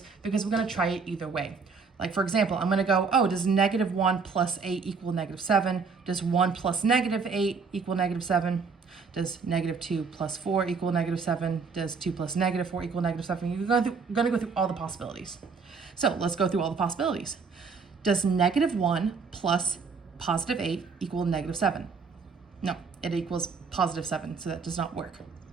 because we're gonna try it either way. Like for example, I'm gonna go, oh, does -1 plus 8 equal -7? Does 1 plus -8 equal -7? Does -2 plus 4 equal -7? Does 2 plus -4 equal -7? You're gonna go through all the possibilities. So let's go through all the possibilities. Does -1 plus +8 equal -7? No, it equals +7, so that does not work.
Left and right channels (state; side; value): quieter; left; 5.1 dB